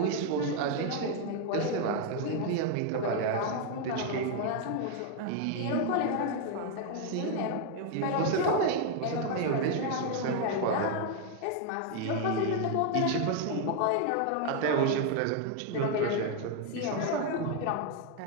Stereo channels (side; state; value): both; different; correlation 0.01